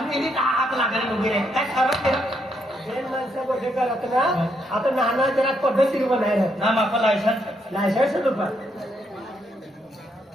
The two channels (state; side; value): normal; both; correlation 0.76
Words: हात लागले वगैरे काय खरं दोन माणसं गोष्टी करत ना आता नाना जरा पद्धतशीर बनायला ना माका लायसन्स लायसन्स तुला